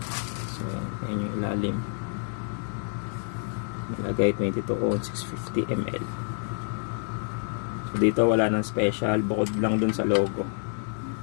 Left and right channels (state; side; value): silent; right; 59 dB below the other